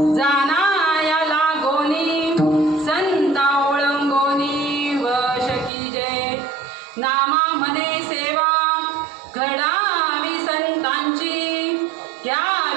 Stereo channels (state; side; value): drops out; left; at 5.7 s